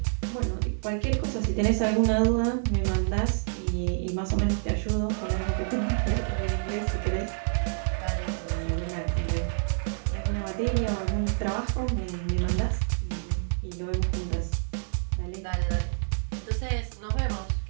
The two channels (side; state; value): left; silent; digital silence